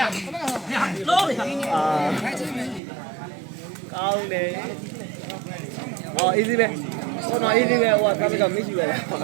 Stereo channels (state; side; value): drops out; left; at 2.8 s